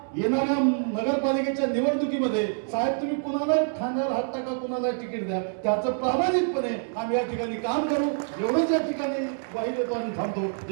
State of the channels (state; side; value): silent; left; 61 dB below the other